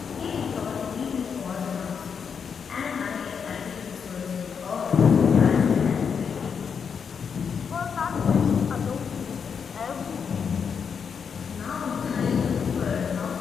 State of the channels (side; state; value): right; quieter; 6.6 dB